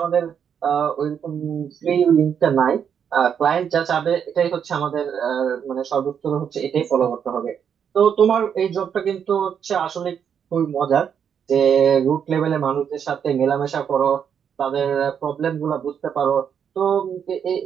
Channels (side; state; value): left; quieter; 7.9 dB